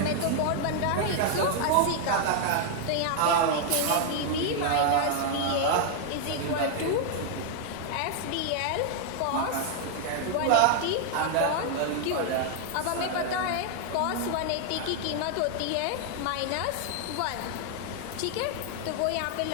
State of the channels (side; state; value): both; different; correlation 0.00